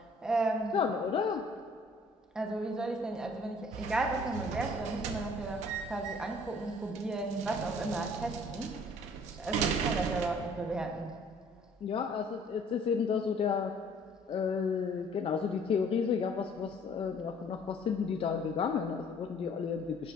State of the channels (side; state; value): both; normal; correlation 0.56